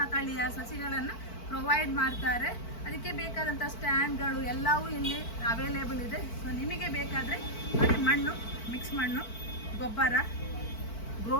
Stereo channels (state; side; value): late; right; 4.5 ms